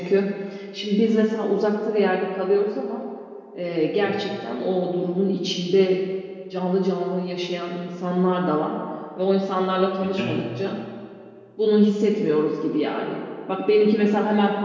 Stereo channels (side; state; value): both; identical; correlation 1.00